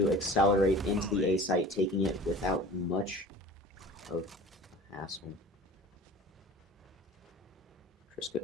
accelerate into the A site, taking it without much of hassle.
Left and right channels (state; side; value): normal; both; correlation 0.40